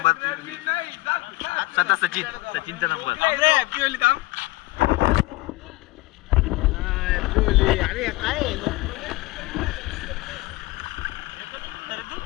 स्वतः सचिनचा नंबर. हॅपी होईल काम. अरे काय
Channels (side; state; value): right; quieter; 20.2 dB